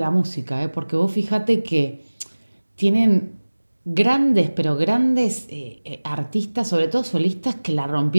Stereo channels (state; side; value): inverted; both; correlation -1.00